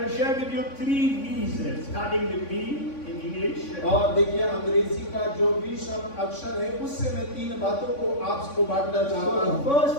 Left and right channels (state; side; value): late; right; 3.5 ms